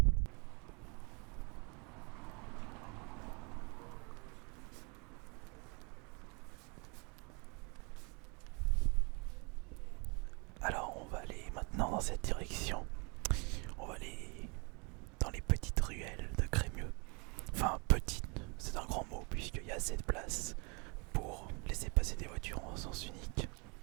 Alors, on va aller maintenant dans cette direction. On va aller dans les petites ruelles de Crémieux. Enfin, petite, c'est un grand mot puisqu'il y a assez de place pour laisser passer des voitures en sens unique.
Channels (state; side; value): quieter; left; 31.6 dB